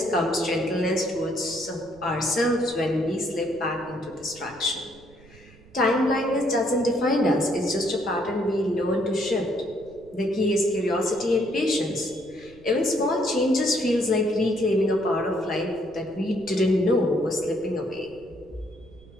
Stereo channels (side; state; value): right; noise; rumble, 24 dB below the sound